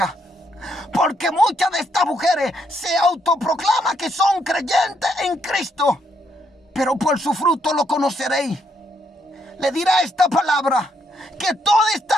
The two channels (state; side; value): normal; both; correlation 0.75